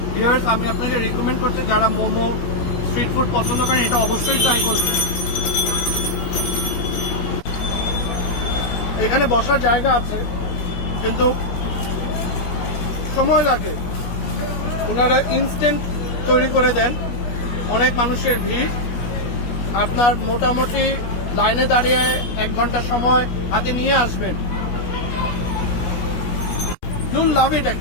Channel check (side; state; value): right; late; 17 ms